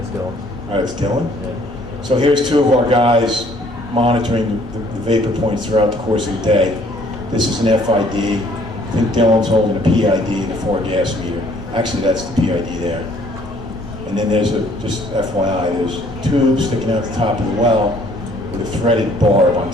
Dylan. All right, it's Dylan. Yeah. So here's two of our guys monitoring the vapor points throughout the course of the day. This is an FID. I think Dylan's holding a PID and a 4-gas meter. Actually, that's the PID there. And then there's just FYI, there's a tube sticking out the top of the well with a threaded barb on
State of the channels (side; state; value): both; normal; correlation 0.60